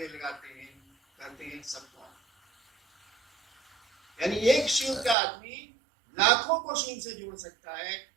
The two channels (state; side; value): drops out; left; at 5.2 s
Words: लगाते हैं, कहते हैं सबको। यानी एक शिव का आदमी लाखों को शिव से जोड़ सकता है।